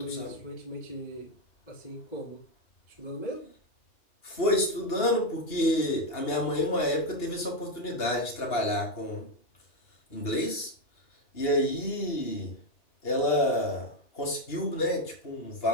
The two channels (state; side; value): late; right; 2.8 ms